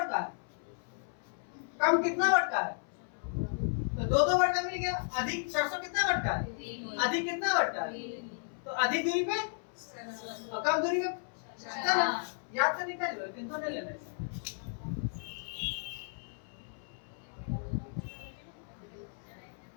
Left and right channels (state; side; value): silent; right; 55 dB below the other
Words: है, कम कितना बढ़ता है, तो दो बढ़ता मिल गया। अधिक सरसों कितना बढ़ता है, अधिक कितना बढ़ता है, तो अधिक दूरी पे और कम दूरी पे चना। याद से निकाल लो, लेकिन तो नहीं लेना है।